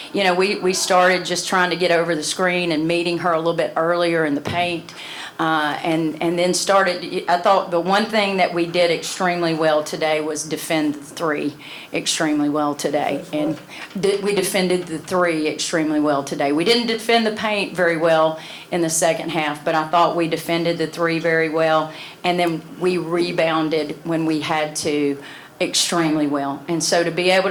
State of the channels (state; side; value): identical; both; correlation 1.00